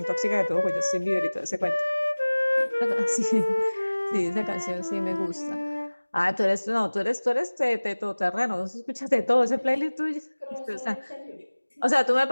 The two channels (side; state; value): both; inverted; correlation -1.00